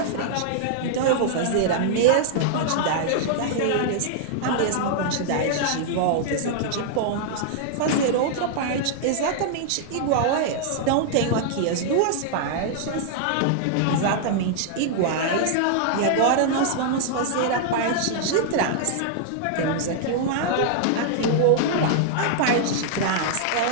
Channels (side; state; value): both; different; correlation -0.01